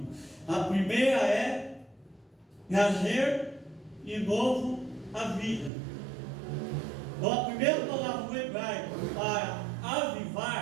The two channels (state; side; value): drops out; left; at 5.7 s